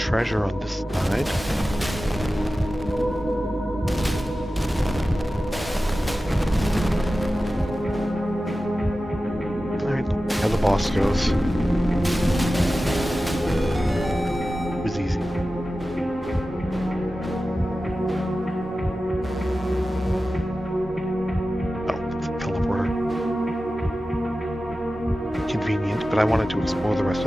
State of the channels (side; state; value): both; normal; correlation 0.94